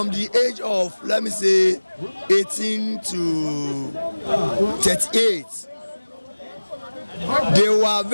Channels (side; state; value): both; inverted; correlation -1.00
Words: the age of, let me say, 18 to 38, they were